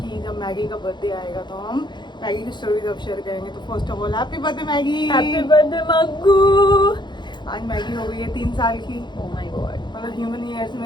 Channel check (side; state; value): right; late; 0.22 ms